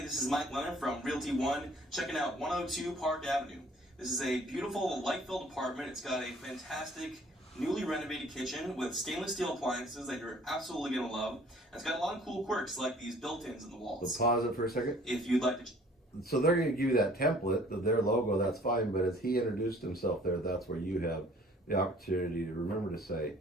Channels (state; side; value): normal; both; correlation 0.55